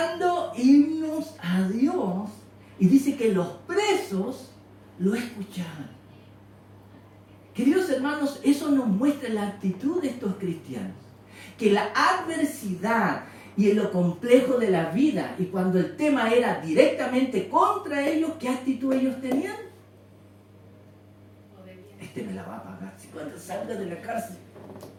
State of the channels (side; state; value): both; identical; correlation 1.00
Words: himnos a Dios. Y dice que los presos lo escuchaban. Queridos hermanos, eso nos muestra la actitud de estos cristianos. Que la adversidad y lo complejo de la vida, y cuando el tema era directamente contra ellos, ¿qué actitud ellos tenían? Este me la va a pagar. Si cuando salga de la cárcel,